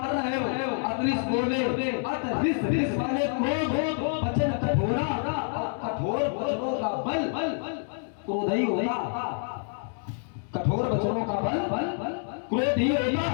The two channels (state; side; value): silent; right; 60 dB below the other